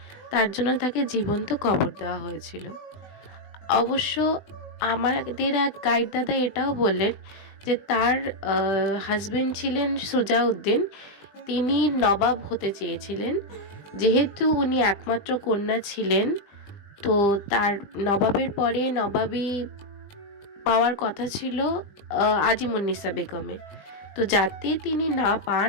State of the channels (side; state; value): right; late; 20 ms